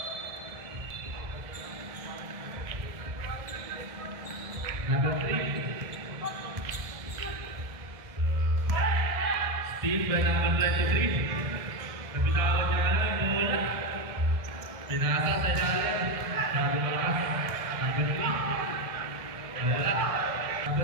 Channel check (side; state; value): left; late; 1.7 ms